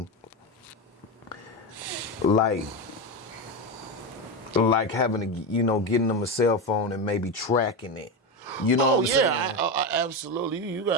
like having to, you know, getting them a cell phone and maybe tracking it. You know what I'm saying? I absolutely. You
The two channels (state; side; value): normal; both; correlation 0.14